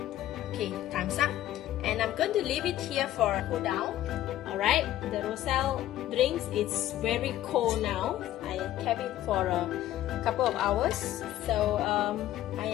Okay, time's up. And I'm going to leave it here for a cool down. Alright, the Roselle drinks is very cold now. I kept it for a couple of hours. So I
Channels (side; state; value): right; quieter; 13.5 dB